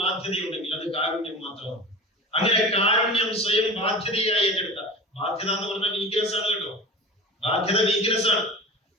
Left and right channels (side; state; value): both; normal; correlation 0.33